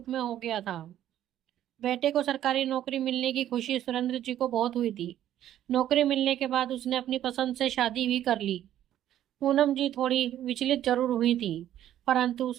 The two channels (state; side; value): quieter; left; 11.8 dB